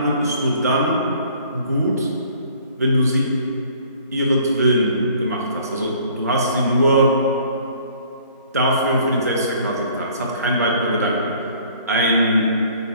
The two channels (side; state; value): both; inverted; correlation -0.55